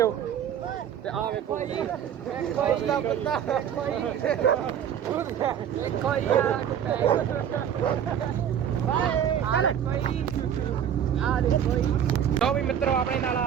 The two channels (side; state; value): left; quieter; 9.1 dB